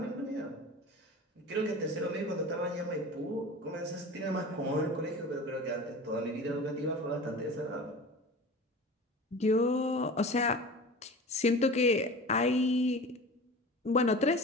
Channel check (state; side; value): normal; both; correlation 0.35